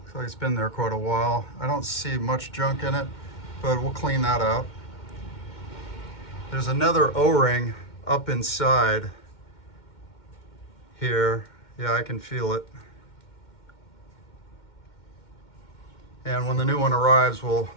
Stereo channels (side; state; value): right; late; 2.1 ms